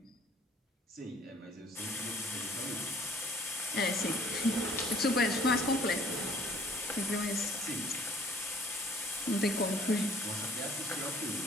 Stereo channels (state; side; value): normal; both; correlation 0.57